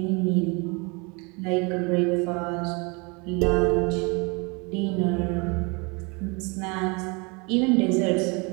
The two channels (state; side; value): quieter; left; 29.8 dB